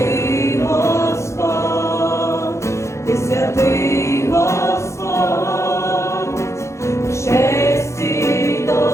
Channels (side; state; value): right; late; 0.14 ms